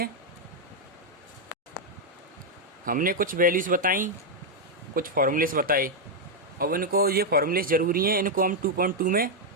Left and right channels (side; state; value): both; normal; correlation -0.01